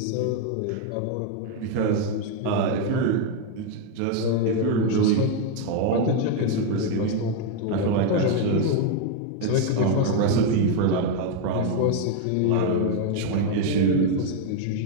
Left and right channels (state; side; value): different; both; correlation 0.01